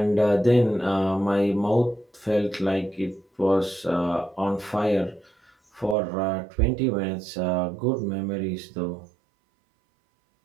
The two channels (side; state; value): left; drops out; at 6.0 s